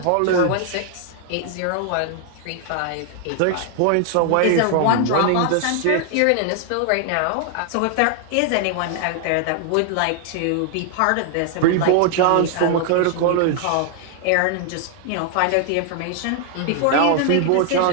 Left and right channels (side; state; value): both; different; correlation 0.00